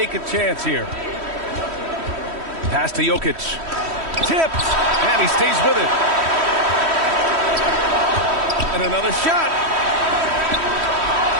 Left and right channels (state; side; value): late; left; 3.1 ms